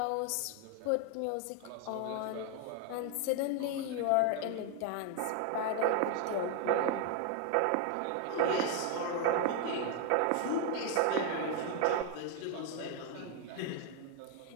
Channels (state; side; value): different; both; correlation 0.00